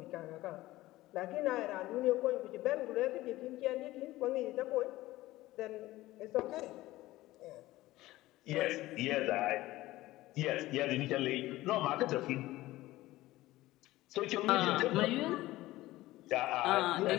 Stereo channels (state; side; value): quieter; right; 17.3 dB